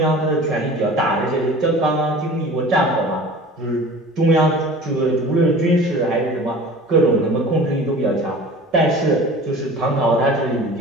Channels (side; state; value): both; normal; correlation 0.41